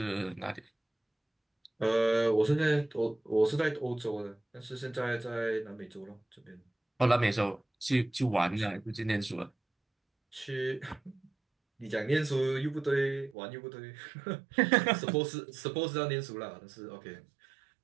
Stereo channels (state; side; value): drops out; left; at 13.4 s